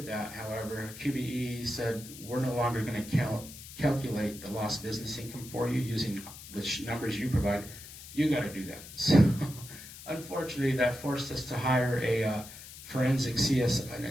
that, however, QBE said, we're no longer going to calculate the lost business income for you using the numbers you provide. You got to do that. So unfortunately, that forced us to hire an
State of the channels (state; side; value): noise; left; hiss, 15 dB below the sound